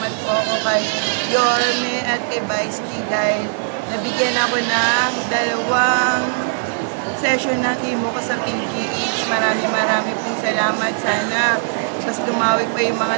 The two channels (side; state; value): left; silent; digital silence